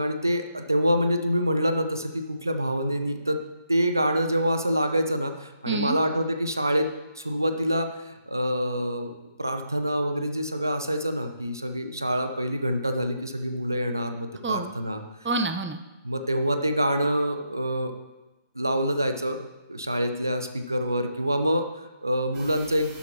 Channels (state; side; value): inverted; both; correlation -0.80